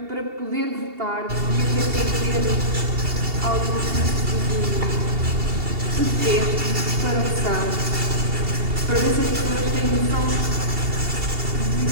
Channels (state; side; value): late; left; 2.7 ms